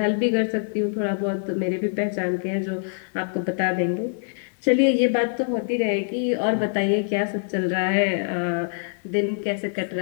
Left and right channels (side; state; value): right; silent; 62 dB below the other